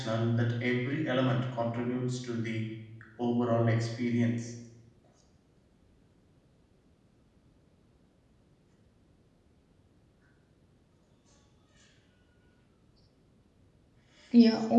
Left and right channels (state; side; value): identical; both; correlation 1.00